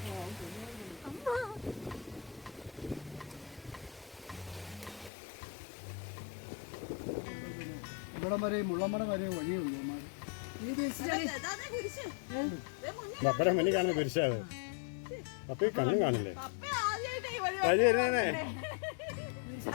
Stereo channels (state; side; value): drops out; right; at 5.1 s